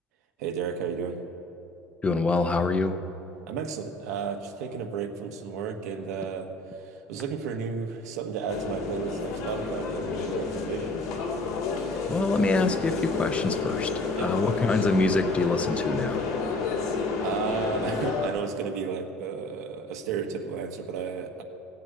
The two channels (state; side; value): normal; both; correlation 0.49